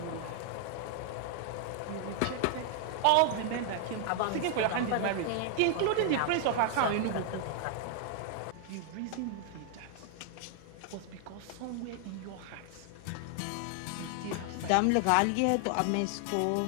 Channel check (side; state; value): both; different; correlation 0.00